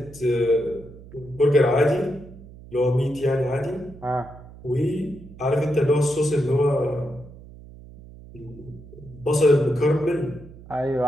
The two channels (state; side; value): noise; right; hum, 18 dB below the sound